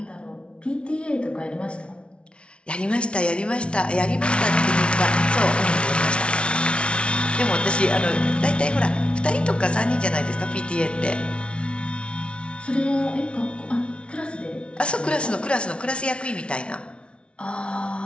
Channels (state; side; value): late; right; 0.059 ms